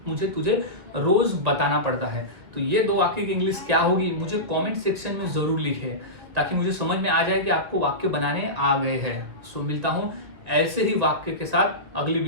मुझे तुझे रोज बताना पड़ता है। तो ये दो वाक्य की इंग्लिश क्या होगी मुझे कमेंट सेक्शन में जरूर लिखें, ताकि मुझे समझ में आ जाए कि आपको वाक्य बनाने आ गए हैं। सो मिलता हूं ऐसे ही वाक्य के साथ अगली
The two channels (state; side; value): late; left; 2.1 ms